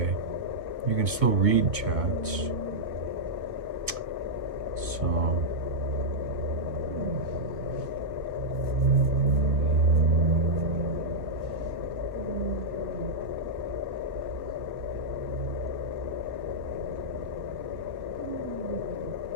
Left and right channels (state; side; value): late; left; 1.8 ms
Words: You can still read chats. So